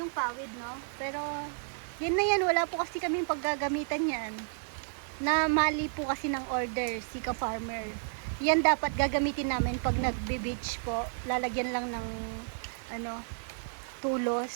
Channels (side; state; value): left; silent; 57 dB below the other